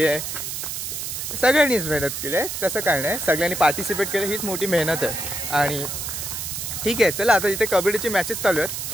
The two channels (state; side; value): noise; right; hiss, 5 dB below the sound